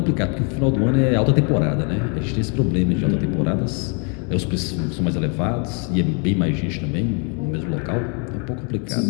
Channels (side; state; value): right; quieter; 37.3 dB